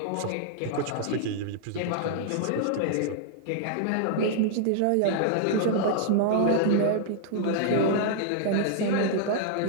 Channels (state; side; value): different; both; correlation -0.01